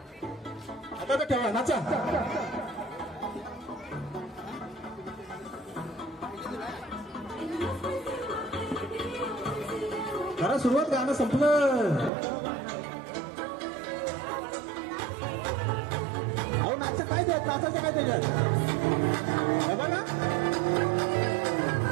आता तर ठेवा. नाचा. करा सुरुवात. गाणं संपलं. अहो नाचा काय द्यायचं. नाचायचं काय त्याच्यात. बघा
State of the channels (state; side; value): drops out; left; at 12.1 s